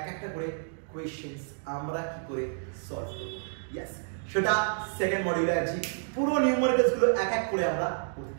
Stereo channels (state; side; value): silent; left; digital silence